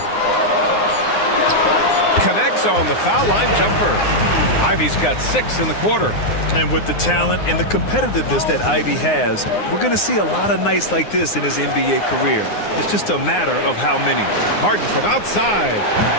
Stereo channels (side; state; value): right; late; 9.7 ms